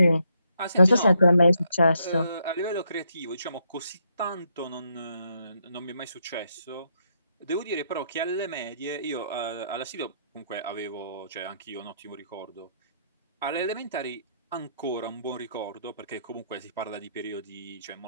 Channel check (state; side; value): inverted; both; correlation -0.75